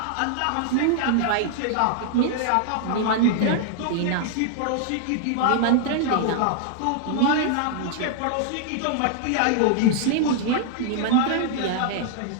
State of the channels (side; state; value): both; different; correlation 0.00